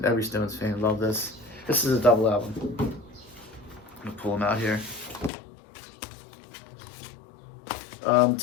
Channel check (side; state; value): right; drops out; at 5.3 s